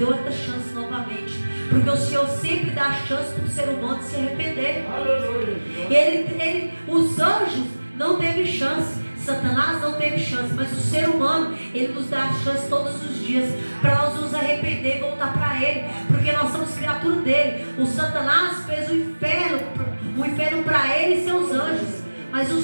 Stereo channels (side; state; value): both; inverted; correlation -1.00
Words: outra chance novamente. Porque o Senhor sempre dá chance para o ser humano se arrepender. Os anjos não teve chance, Satanás não teve chance, mas o ser humano, ele nos dá chance todos os dias para nós nos arrepender e voltar para ele, porque nós somos criatura dele. O Satanás fez o inferno para ele e seus anjos, mas o